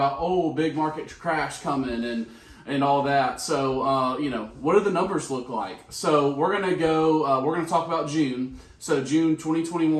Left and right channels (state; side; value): identical; both; correlation 1.00